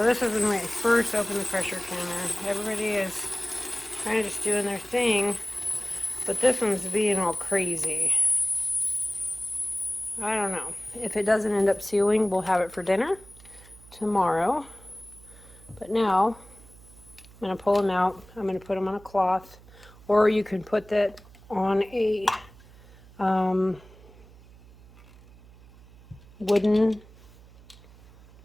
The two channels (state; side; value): noise; right; hum, 22 dB below the sound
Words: this is when I first opened the pressure canner. Everybody is kind of just doing their thing, but this one's being all crazy. I don't know. If it doesn't end up sealing, we'll have it for dinner tomorrow. But now, I'm going to pull them out. I'm going to put them on a cloth, or you can put that on a wooden